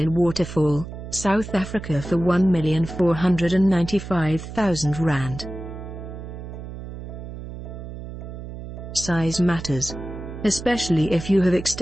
Waterfall, South Africa for R1,495,000. Size matters, especially if you have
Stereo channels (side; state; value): right; noise; hum, 10 dB below the sound